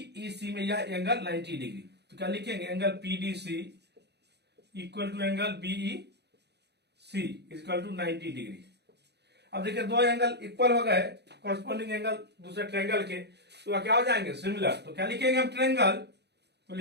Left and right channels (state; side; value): late; left; 0.49 ms